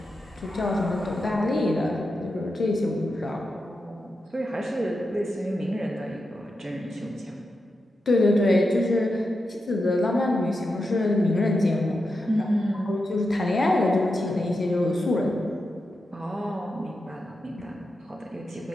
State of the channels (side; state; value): both; normal; correlation 0.88